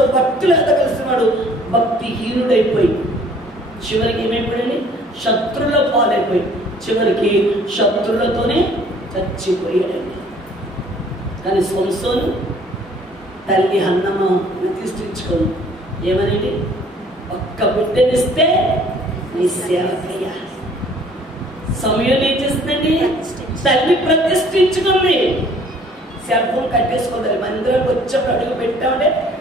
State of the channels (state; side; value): normal; both; correlation 0.56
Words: భక్తులు ఎదగలిసిన వాడు భక్తిహీనుడైపోయి చివరికి ఏమైపోయాడు? శత్రువుల పాలైపోయి చివరికి శత్రువులతోనే చచ్చిపోయాడండి. కానీ సంసోను తల్లి హన్నమ్మ ప్రతిష్ఠించుకోను ఏమనండి? ఒక్క బిడ్డనిస్తే నీ సేవకయ్యా. సమయం ఏం చేస్తుందండి? తల్లి ప్రతిష్ఠించుకుంది. Cell phone కట్టేసుకోవాలి. మందిరం వచ్చేప్పుడు అడుగు పెట్టామంటే